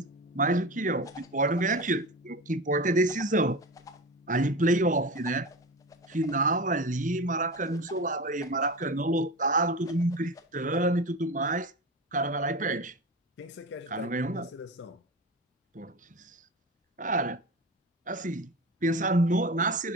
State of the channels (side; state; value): both; normal; correlation 0.27